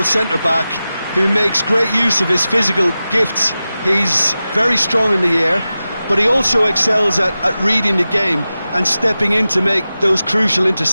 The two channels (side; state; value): both; inverted; correlation -0.94